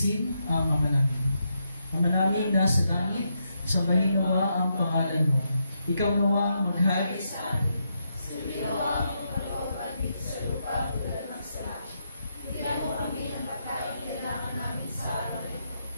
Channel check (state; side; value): inverted; both; correlation -0.81